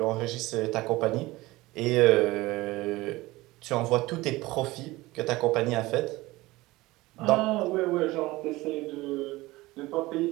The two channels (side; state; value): left; quieter; 19.7 dB